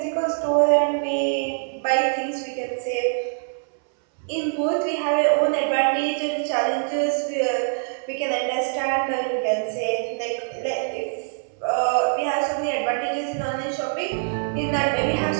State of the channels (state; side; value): silent; left; 61 dB below the other